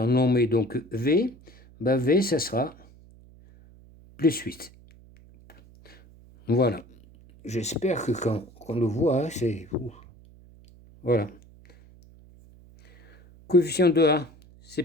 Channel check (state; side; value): noise; right; hum, 24 dB below the sound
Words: nommé donc V, ben V, ça sera plus 8. Voilà. J'espère que quand on le voit, c'est... Voilà. Coefficient de A, c'est